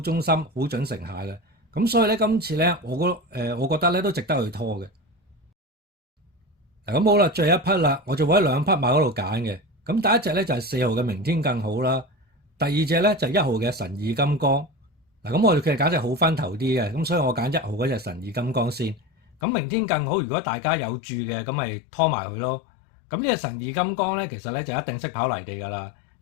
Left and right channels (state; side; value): drops out; right; at 19.4 s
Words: 心、好準成下嘅。咁所以咧今次咧我覺得咧都值得去拖嘅。咁好啦，最後一匹啦，我就會喺2匹馬嗰度揀嘅。咁第一隻咧就係4號嘅明天更好啦，第二隻咧就係1號嘅神意金剛。嗱，咁我哋其實揀隻好分頭啲嘅，咁所以我揀1號嗰隻神意金剛先。咁明天更好，如果大家有注嘅，咁咪拖埋佢咯。咁呢隻神意金剛咧，其實咧就一定識跑泥地㗎啦，